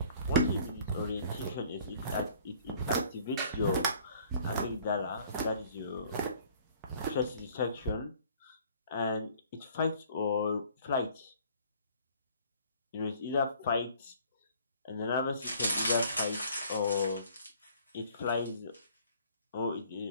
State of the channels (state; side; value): inverted; both; correlation -0.55